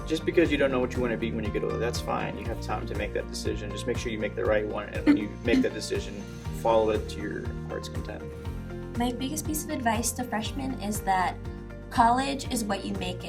just because you don't know what you want to be when you get older, that's fine. You have time to make that decision. Just make sure you make the right one, and when you make that decision, follow it to your heart's content. My biggest piece of advice to freshmen is that college is what you make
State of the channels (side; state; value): both; identical; correlation 1.00